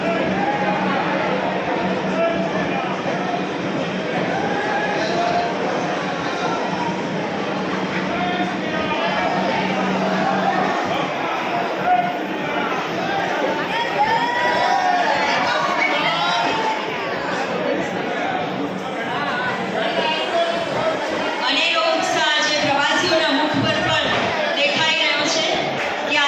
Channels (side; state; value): both; identical; correlation 1.00